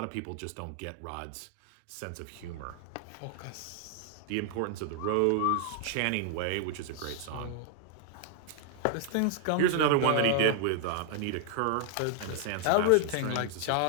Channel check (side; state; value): both; different; correlation 0.00